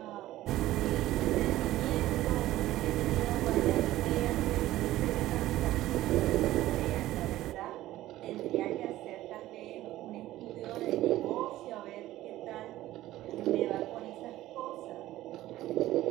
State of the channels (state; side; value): quieter; left; 15.3 dB